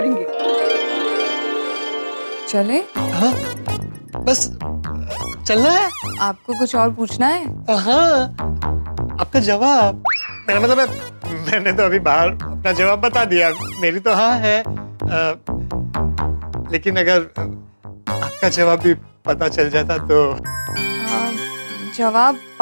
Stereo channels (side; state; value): both; inverted; correlation -1.00